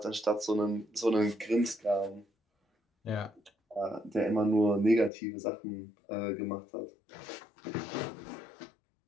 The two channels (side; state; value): right; drops out; at 5.1 s